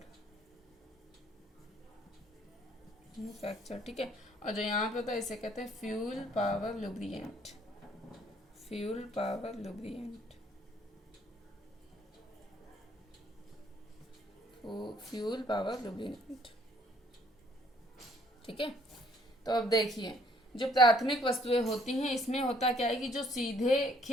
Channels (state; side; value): normal; both; correlation 0.63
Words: ठीक है। और जो यहाँ पे होता है इसे कहते हैं fuel power lubricant, fuel power lubricant, fuel power lubricant. ठीक है, तो अब देखिए, जो प्राथमिक वस्तुएं होती हैं, इसमें होता क्या है कि जो सीधे